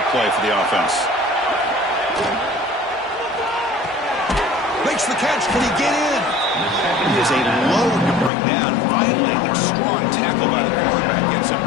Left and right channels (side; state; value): right; drops out; at 8.3 s